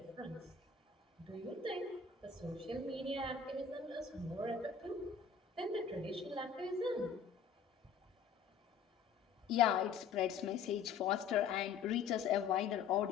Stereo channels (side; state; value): right; quieter; 6.3 dB